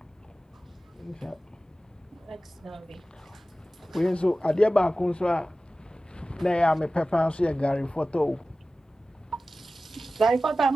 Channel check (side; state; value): both; normal; correlation 0.95